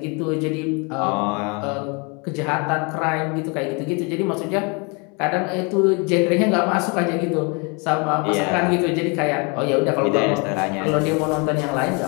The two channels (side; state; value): right; quieter; 32.0 dB